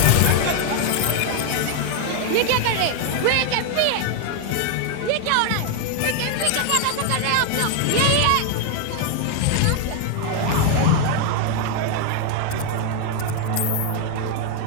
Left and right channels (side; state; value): both; different; correlation 0.01